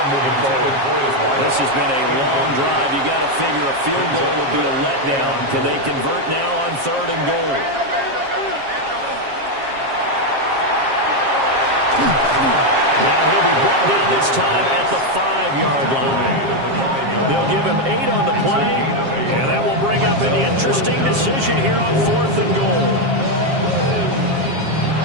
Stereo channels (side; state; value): left; late; 7.4 ms